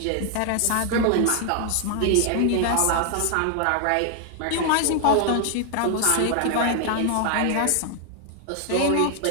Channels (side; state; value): both; different; correlation 0.00